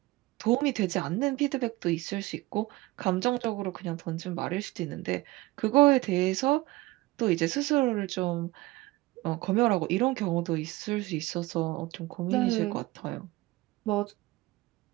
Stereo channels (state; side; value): quieter; left; 19.8 dB